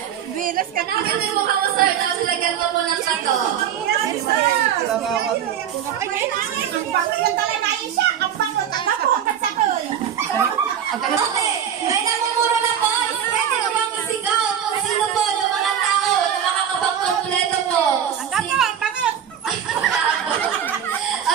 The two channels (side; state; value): left; quieter; 9.0 dB